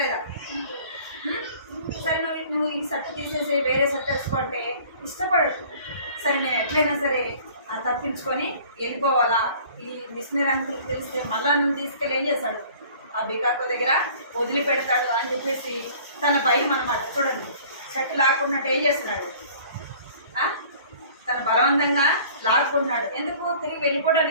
సరే నువ్వు ఈ షర్ట్ తీసేసి వేరే షర్ట్ వేసుకోంటే ఇష్టపడదు. సరే నేను ఎట్లయినా సరే తప్పించుకొని వెళ్ళిపోవాలా, ఈ మిషనరీ అంకుల్ తెలిస్తే మళ్ళా నువ్వు తీసుకెళ్ళి ఏం చేస్తాడు, ఆ బికాకో దగ్గర వదిలిపెడతాడు అని చెప్పేసి తన భయం అనమాట. చూడండి షర్ట్ లాక్కున్నట్టు ఏం చేస్తున్నాడు, తన బలవంతంగా లాక్కున్నాడు. ఎందుకు, తిరిగి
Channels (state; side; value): inverted; both; correlation -0.50